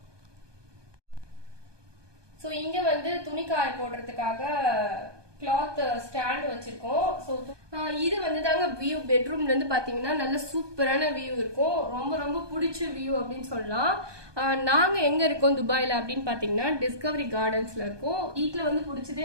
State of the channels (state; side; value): late; left; 1.2 ms